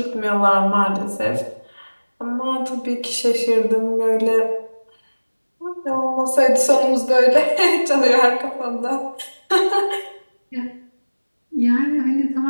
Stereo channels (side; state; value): both; inverted; correlation -1.00